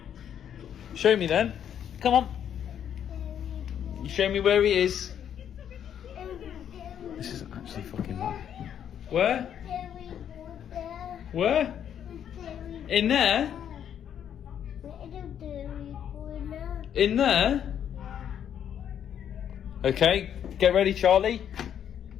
Show me then. Come on. You show me where he is. This is actually fucking bad. Where? Where? In there? In there? Okay, get ready, Charlie.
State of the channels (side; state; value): right; quieter; 9.3 dB